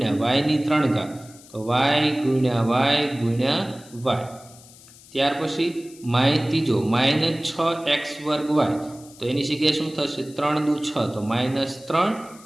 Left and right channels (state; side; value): noise; left; hiss, 22 dB below the sound